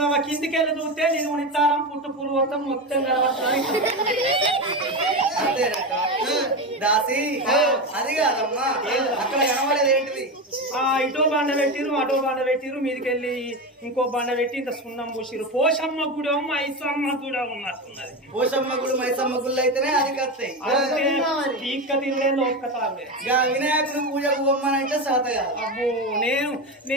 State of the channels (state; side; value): normal; both; correlation 0.18